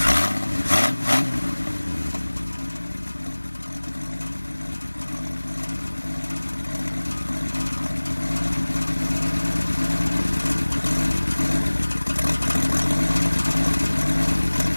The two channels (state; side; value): inverted; both; correlation -1.00